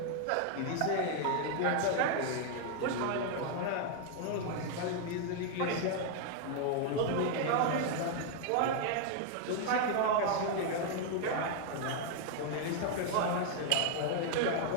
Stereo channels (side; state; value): both; different; correlation 0.00